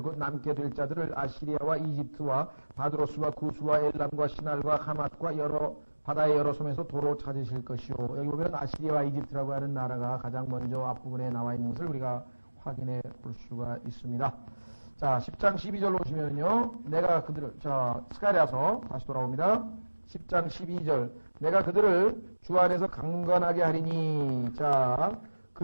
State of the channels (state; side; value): inverted; both; correlation -1.00